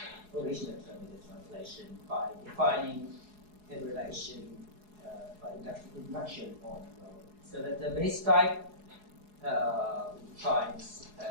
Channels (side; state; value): left; late; 4.8 ms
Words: original term with the translation by defining a relation by induction on rho. So that the base type finds